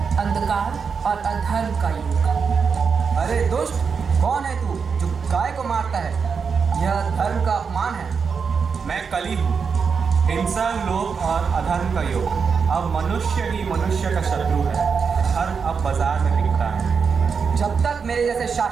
अंधकार और अधर्म का युग। अरे दुष्ट, कौन है तू जो गाय को मारता है? यह धर्म का अपमान है। मैं कली हूँ, हिंसा, लोभ और अधर्म का युग। अब मनुष्य ही मनुष्य का शत्रु है। धर्म अब बाजार में बिकता है। जब तक मेरे जैसे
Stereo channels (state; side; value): quieter; left; 5.8 dB